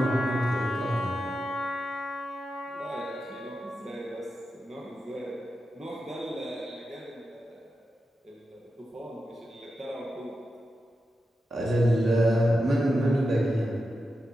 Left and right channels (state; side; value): normal; both; correlation 0.89